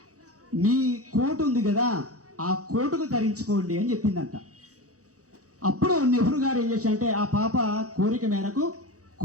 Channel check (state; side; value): late; left; 0.66 ms